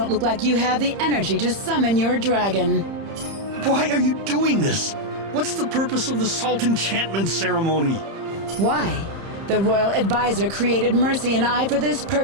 look like you have the energy to summon your dragon. Why are you doing this? What's the purpose of the salt enchantment ceremony? Why? The royal advisor created Mercy and I for this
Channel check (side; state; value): left; late; 30 ms